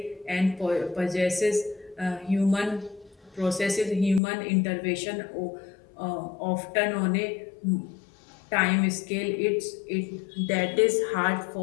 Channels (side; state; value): right; drops out; at 4.2 s